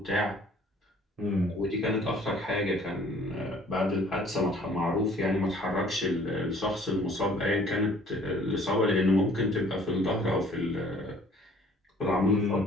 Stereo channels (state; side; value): normal; both; correlation 0.55